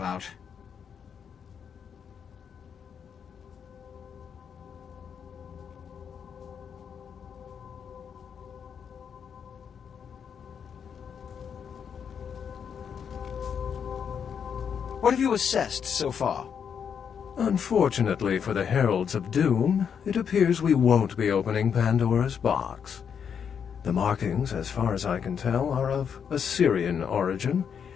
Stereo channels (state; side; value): quieter; right; 7.4 dB